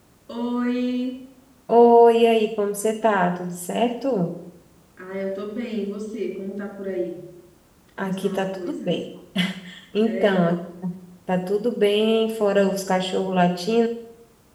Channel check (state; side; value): identical; both; correlation 1.00